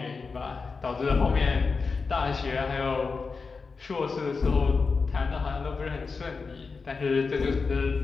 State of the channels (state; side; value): quieter; right; 4.6 dB